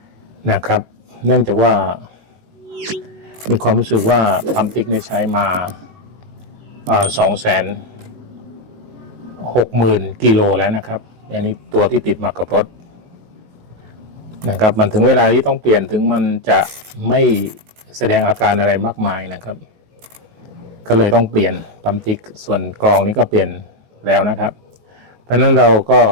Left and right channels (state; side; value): late; left; 19 ms